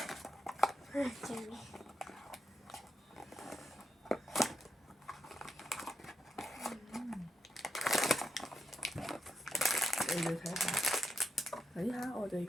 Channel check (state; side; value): normal; both; correlation 0.83